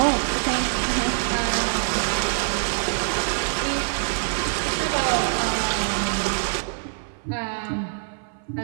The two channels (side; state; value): left; silent; 56 dB below the other